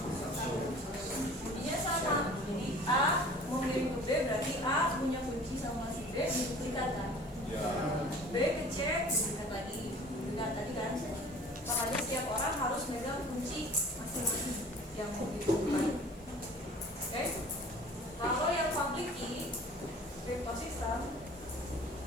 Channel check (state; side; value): normal; both; correlation 0.46